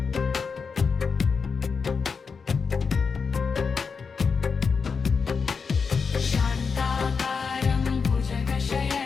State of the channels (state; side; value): quieter; right; 5.4 dB